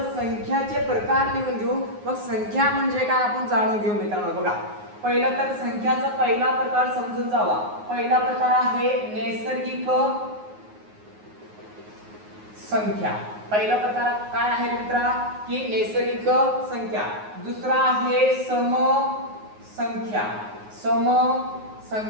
संख्याचे प्रकार लिहून घेऊ, मग संख्या म्हणजे काय आपण जाणून घेऊ मित्रांनो. बघा, पहिला तर संख्याचा पहिला प्रकार समजून जावा. पहिला प्रकार आहे नैसर्गिक संख्या. पहिला प्रकार काय आहे मित्रा, की नैसर्गिक संख्या. दुसरा आहे सम संख्या, सम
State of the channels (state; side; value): late; left; 9.5 ms